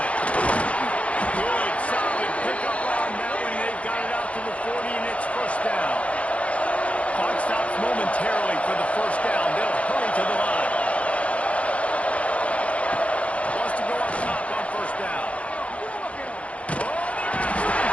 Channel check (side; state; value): right; late; 0.063 ms